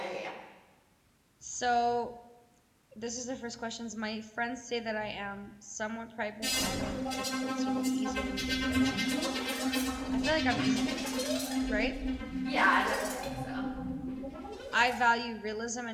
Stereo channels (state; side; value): identical; both; correlation 1.00